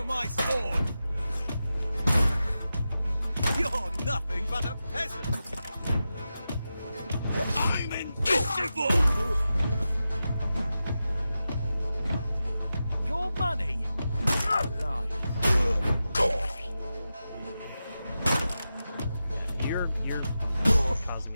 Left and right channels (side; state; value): both; inverted; correlation -0.91